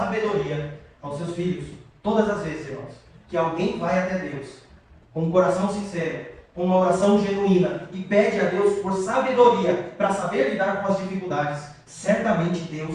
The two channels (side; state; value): both; identical; correlation 1.00